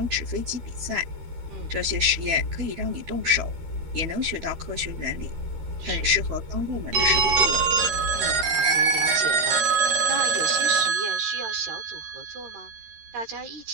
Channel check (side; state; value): left; late; 13 ms